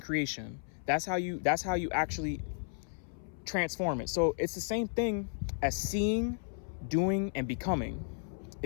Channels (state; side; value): silent; right; 55 dB below the other